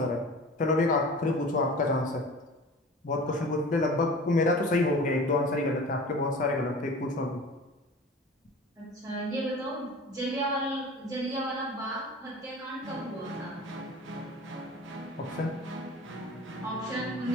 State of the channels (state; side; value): normal; both; correlation 0.39